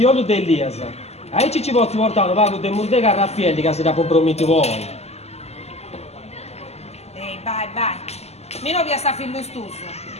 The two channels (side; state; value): right; late; 0.30 ms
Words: dell'Elias. A ci posso portare un paio di murdega a Raffaelli che si da comprometti voi. Ehi, vai. Meno via sta fillustuso.